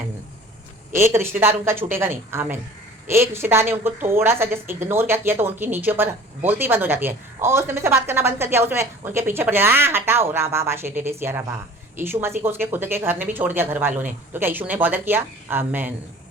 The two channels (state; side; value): normal; both; correlation 0.46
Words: एक रिश्तेदार उनका छूटेगा नहीं। आमेन। एक रिश्तेदार ने उनको थोड़ा सा जस्ट इग्नोर क्या किया तो उनकी नीचे पर बोलती बंद हो जाती है, और उसने मुझसे बात करना बंद कर दिया, उसमें उनके पीछे पड़ जाए, हटाओ राबा बाशे टेटे सिया राबा। यीशु मसीह को उसके खुद के घर ने भी छोड़ दिया, घर वालों ने, तो क्या यीशु ने बॉदर किया? आमेन,